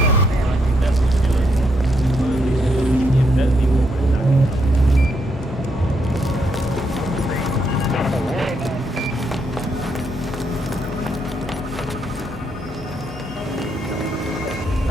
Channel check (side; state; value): both; normal; correlation 0.77